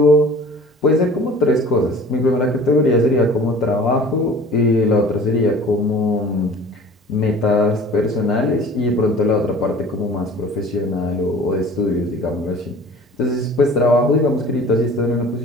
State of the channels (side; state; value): both; normal; correlation 0.45